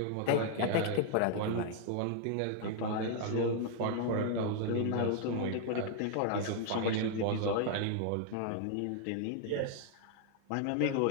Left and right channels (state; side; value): different; both; correlation 0.00